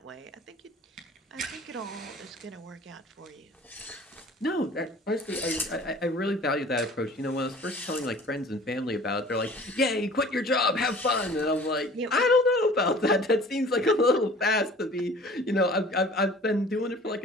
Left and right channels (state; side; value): normal; both; correlation 0.47